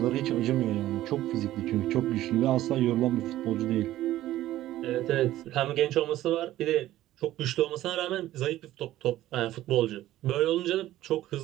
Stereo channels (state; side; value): quieter; left; 14.5 dB